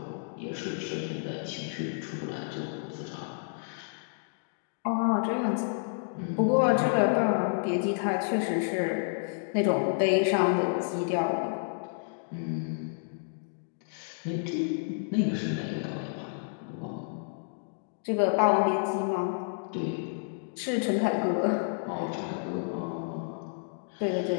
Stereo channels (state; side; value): silent; right; digital silence